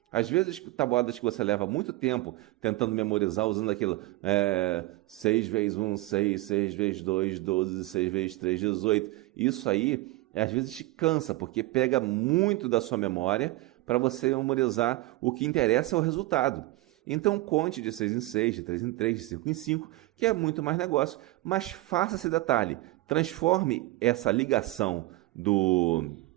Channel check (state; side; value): quieter; left; 19.2 dB